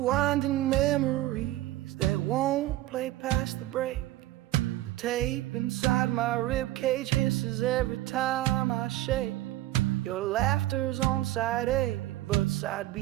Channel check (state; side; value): quieter; left; 15.6 dB